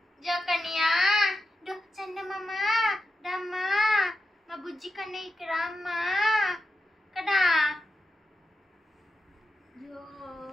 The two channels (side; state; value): both; normal; correlation 0.90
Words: జోకనియా చందమామ రమ్మా మా బుజ్జి కన్నా ఇక్కడ అమ్మా కదా. జో